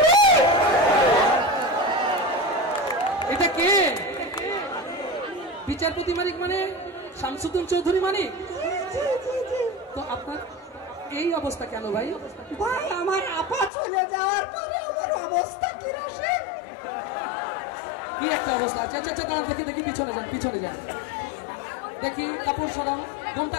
এটা কে? বিচারপতি মানিক মানে শামসুদ্দিন চৌধুরী মানিক? তো আপনার এই অবস্থা কেন ভাই? ভাই আমার আপা চলে যাওয়ার পরে আমার অবস্থা কি রকম? কি একটা অবস্থা। আচ্ছা আচ্ছা, দাঁড়ান, দেখি দেখি, পিছনে যান, পিছনে যান, দেখি কাপড় সরাও, গমটা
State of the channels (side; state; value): right; drops out; at 13.7 s